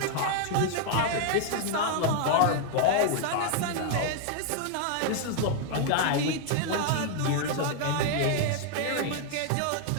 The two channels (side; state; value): both; different; correlation 0.00